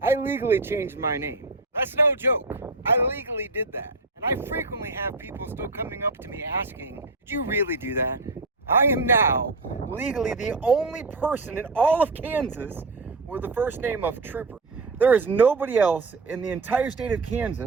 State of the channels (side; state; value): left; quieter; 3.4 dB